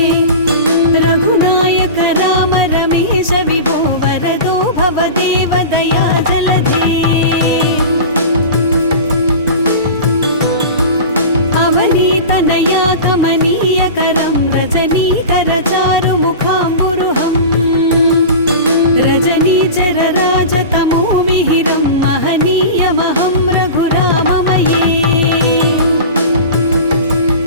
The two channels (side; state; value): both; inverted; correlation -0.31